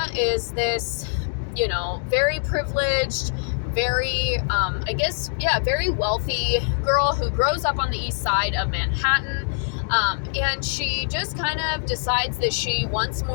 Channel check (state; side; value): silent; right; digital silence